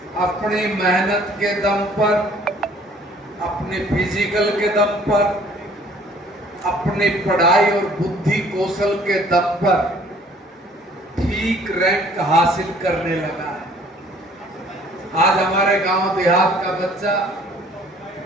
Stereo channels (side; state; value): both; normal; correlation 0.56